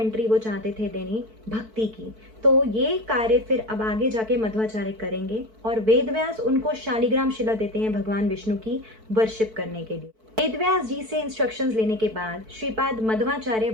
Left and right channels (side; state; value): left; late; 4.5 ms